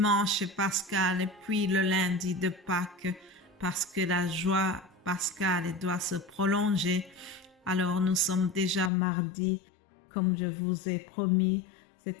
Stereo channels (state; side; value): drops out; right; at 8.9 s